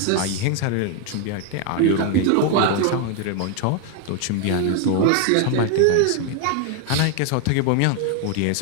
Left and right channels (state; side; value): different; both; correlation 0.01